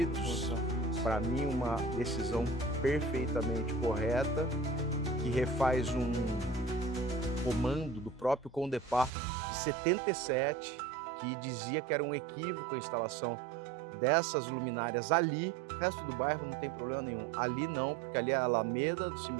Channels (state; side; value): drops out; left; at 9.1 s